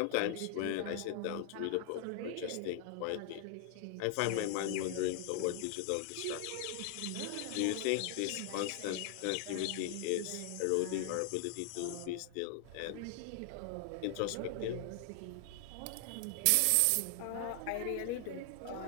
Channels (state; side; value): different; both; correlation 0.00